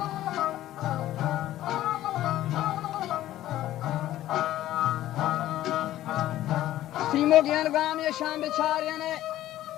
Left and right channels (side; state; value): right; quieter; 14.0 dB